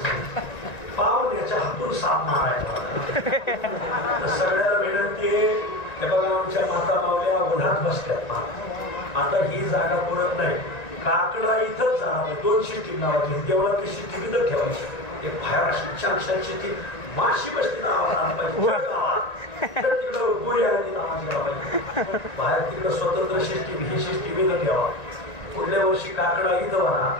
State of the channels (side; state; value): right; late; 1.9 ms